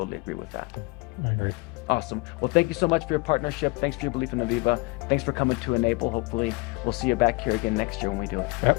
agree with that. I agree. Awesome. Well, thank you so much for your partnership. Thanks for your belief in Aviva. Thanks for coming to Enable. Hopefully we'll see you back here again next year when we do it.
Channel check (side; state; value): right; quieter; 25.4 dB